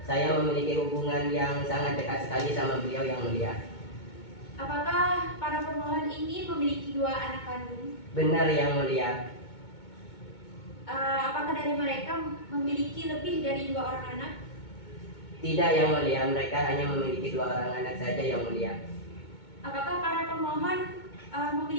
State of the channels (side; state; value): right; late; 2.2 ms